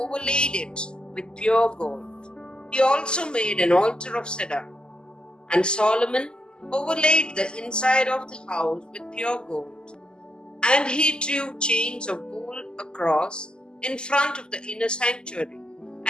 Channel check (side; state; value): right; late; 0.047 ms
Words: it with pure gold. He also made an altar of cedar. And Solomon overlaid the inside of the house with pure gold. And he drew chains of gold across in front of the inner sanctuary